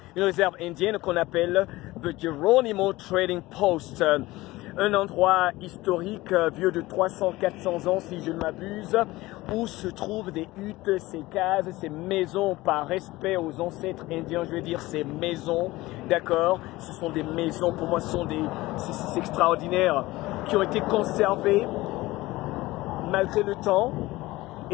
qu'on appelle The Geronimo Trading Post. Un endroit historique vieux de 300-400 ans si je ne m'abuse, où se trouvent des huttes, ces cases, ces maisons par respect aux ancêtres indiens, je veux dire ces maisons, d'accord? Ce sont des maisons, pour moi ce sont c'est extraordinaire, qui ont été conservées malgré le temps.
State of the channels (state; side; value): quieter; right; 19.1 dB